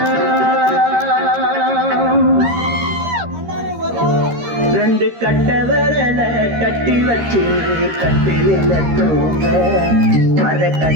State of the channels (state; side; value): late; left; 13 ms